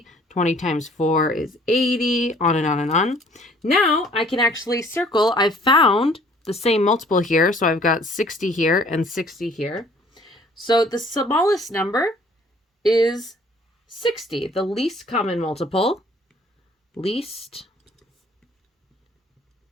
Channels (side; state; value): both; normal; correlation 0.56